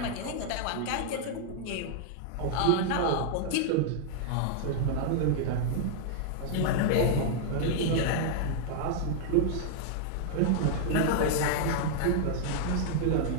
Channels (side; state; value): both; different; correlation -0.01